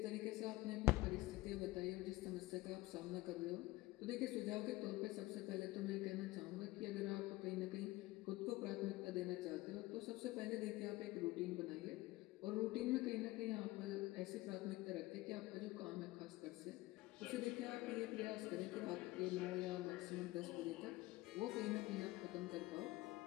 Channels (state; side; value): quieter; right; 19.1 dB